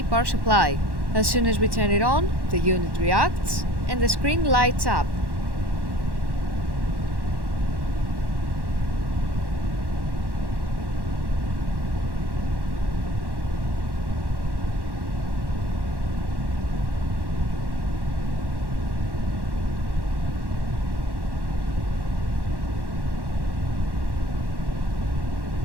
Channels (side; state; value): left; late; 1.1 ms